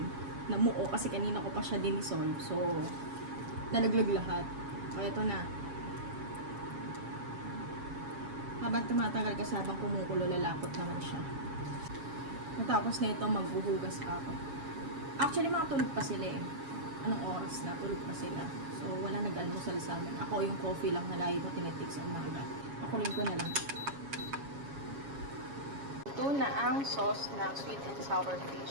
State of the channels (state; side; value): late; left; 7.3 ms